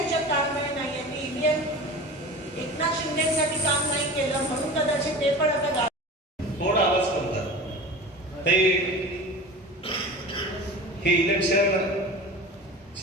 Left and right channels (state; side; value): normal; both; correlation 0.35